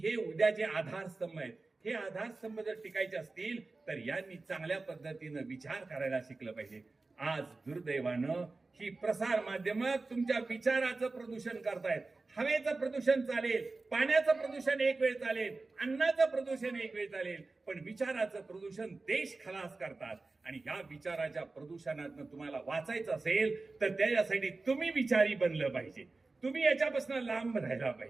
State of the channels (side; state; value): left; quieter; 3.6 dB